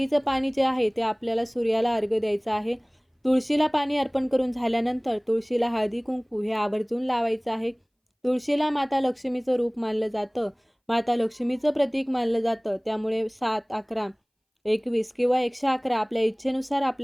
पाणी जे आहे ते आपल्याला सूर्याला अर्घ्य द्यायचं आहे. तुळशीला पाणी अर्पण करून झाल्यानंतर तुळशीला हळदी कुंकू हे आवर्जून लावायचं आहे. तुळशीला माता लक्ष्मीचं रूप मानलं जातं. माता लक्ष्मीचं प्रतीक मानलं जातं. त्यामुळे 7, 11, 21 किंवा 111 आपल्या इच्छेनुसार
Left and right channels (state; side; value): identical; both; correlation 1.00